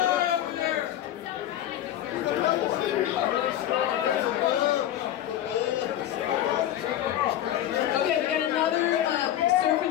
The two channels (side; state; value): right; quieter; 12.1 dB